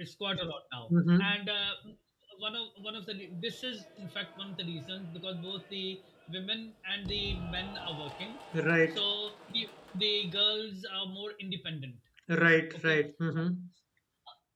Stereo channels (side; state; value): both; identical; correlation 1.00